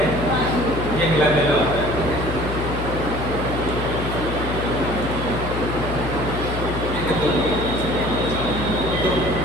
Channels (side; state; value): left; noise; hum, 5 dB below the sound